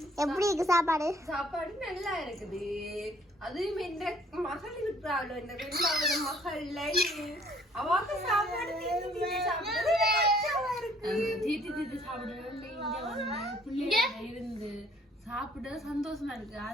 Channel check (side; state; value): both; normal; correlation 0.60